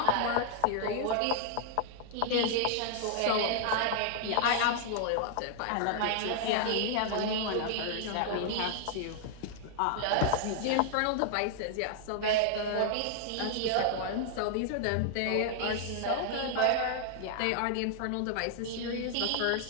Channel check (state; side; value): different; both; correlation -0.01